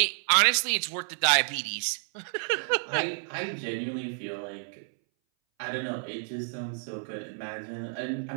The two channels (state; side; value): silent; left; 58 dB below the other